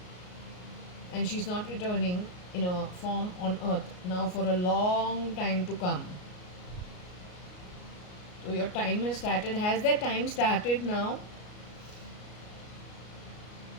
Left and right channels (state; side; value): late; right; 33 ms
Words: and she's not returning in a form on earth now for a long time to come. So your time has started. Has that time started now?